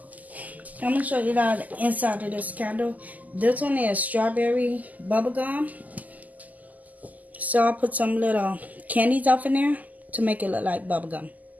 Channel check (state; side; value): late; left; 0.079 ms